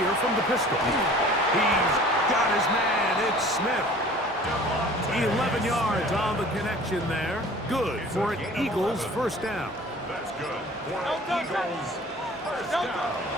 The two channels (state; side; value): normal; both; correlation 0.47